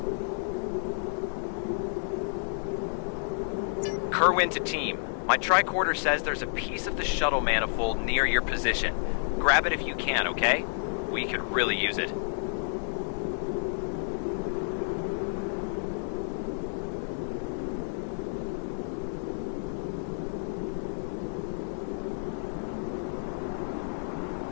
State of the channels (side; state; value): right; silent; 58 dB below the other